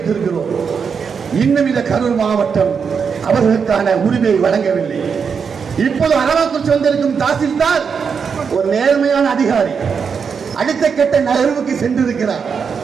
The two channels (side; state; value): left; quieter; 6.2 dB